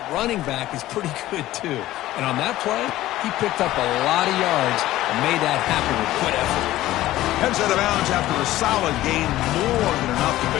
running back is pretty good too. And on that play, he picked up a lot of yards and made that happen with good effort. Heads out of bounds after a solid gain, more than enough to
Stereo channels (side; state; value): right; quieter; 15.4 dB